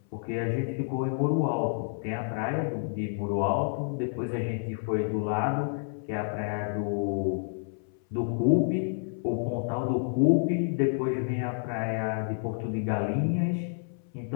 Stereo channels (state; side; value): silent; right; 58 dB below the other